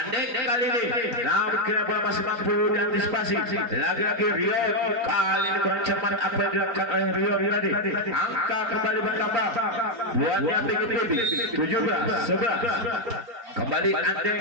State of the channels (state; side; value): late; left; 4.4 ms